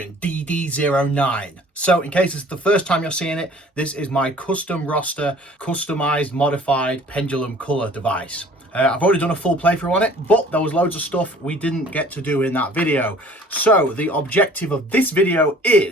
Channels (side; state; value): both; normal; correlation 0.51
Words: DD09. So in case it's the first time you're seeing it, this is my custom roster, customized, modified Pendulum Colour device. I've already done a full playthrough on it, but there was loads of stuff we didn't get to do in that video. So the objective of this video